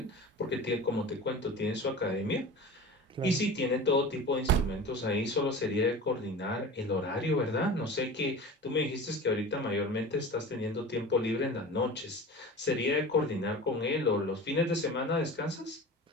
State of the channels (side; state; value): both; normal; correlation 0.35